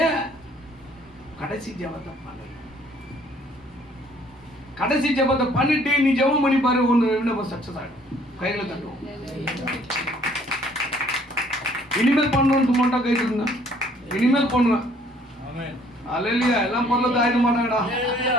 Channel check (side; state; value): both; normal; correlation 0.60